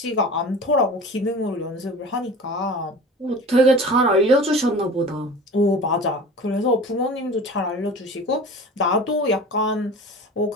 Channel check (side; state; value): both; normal; correlation 0.38